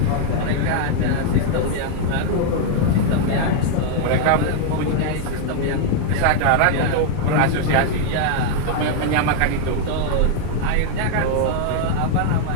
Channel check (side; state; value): both; different; correlation 0.00